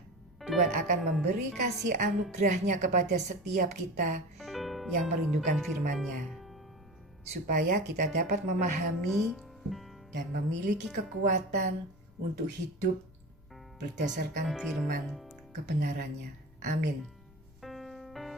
Tuhan akan memberi kasih anugerahnya kepada setiap kita yang merindukan firman-Nya, supaya kita dapat memahami dan memiliki kekuatan untuk hidup berdasarkan firman kebenarannya. Amin.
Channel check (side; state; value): left; noise; rumble, 26 dB below the sound